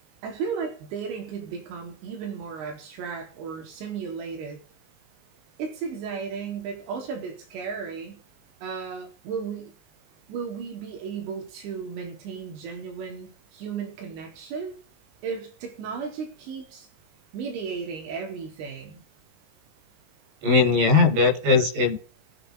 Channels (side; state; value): left; late; 19 ms